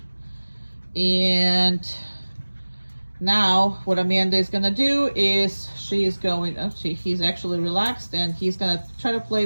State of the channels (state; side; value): inverted; both; correlation -1.00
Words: And now what Amanda is gonna do is she's going, oh, see, he's actually relaxed, and he's gonna try to